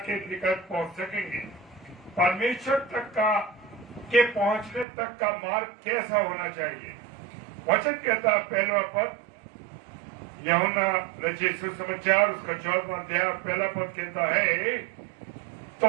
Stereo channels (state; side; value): drops out; left; at 4.9 s